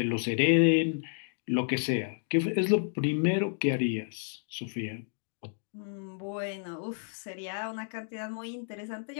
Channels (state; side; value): silent; right; 57 dB below the other